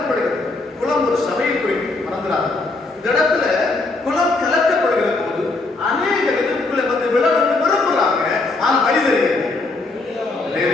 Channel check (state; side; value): quieter; right; 3.4 dB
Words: குளம் ஒரு சபையை குறிக்கும், மறந்துடாது. இந்த இடத்துல குளம் கலக்கப்படுகிற போது அநேக எதிர்ப்புகளை வந்து விழணும்னு விரும்புறாங்க. ஆனா வழி